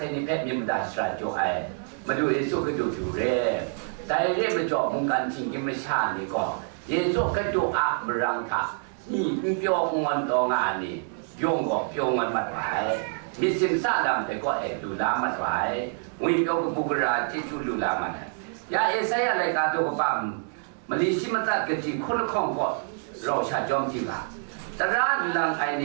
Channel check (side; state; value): left; silent; 60 dB below the other